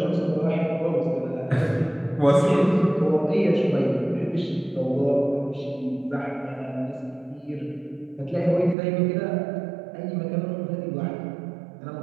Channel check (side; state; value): left; drops out; at 8.8 s